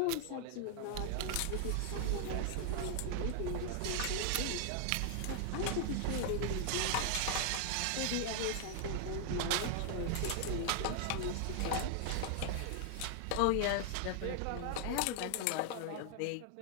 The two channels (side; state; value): both; different; correlation 0.00